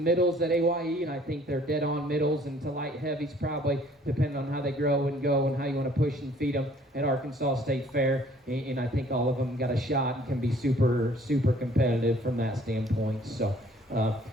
at AYE, and I think they're dead on middles and to light heavies probably, depending on how they grow and go and how you want to push and feed them at Arkansas State Fair. And I think all of them got a shot and can be super, super competitive from that standpoint. So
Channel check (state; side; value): normal; both; correlation 0.57